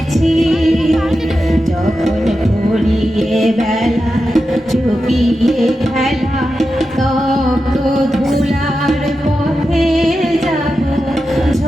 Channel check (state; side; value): normal; both; correlation 0.90